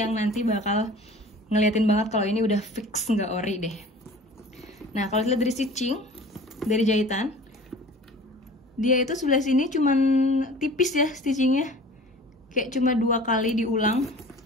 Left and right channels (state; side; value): normal; both; correlation 0.43